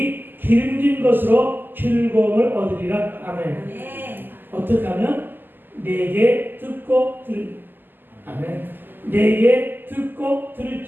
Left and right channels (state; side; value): late; left; 0.091 ms